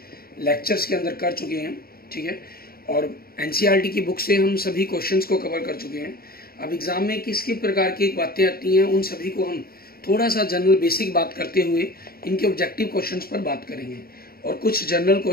लेक्चर्स के अंदर कर चुके हैं, ठीक है। और एनसीईआरटी की बुक से हम सभी क्वेश्चंस को कवर कर चुके हैं। अब एग्जाम में किस किस प्रकार की बातें आती हैं उन सभी को हम थोड़ा सा जनरल बेसिक बात करते हुए इनके ऑब्जेक्टिव क्वेश्चंस पर बात करेंगे, और कुछ जनरल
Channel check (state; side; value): late; right; 0.44 ms